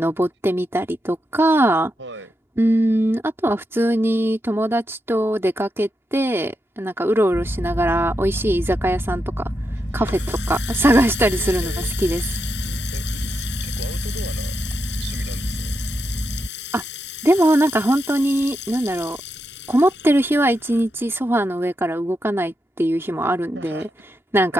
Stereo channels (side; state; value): both; normal; correlation 0.85